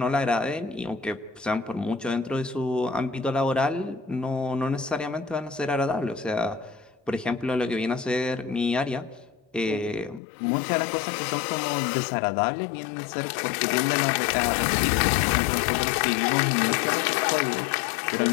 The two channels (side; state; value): right; drops out; at 10.2 s